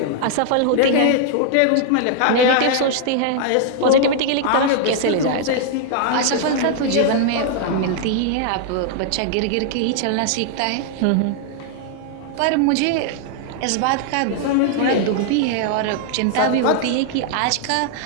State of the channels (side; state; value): both; different; correlation 0.00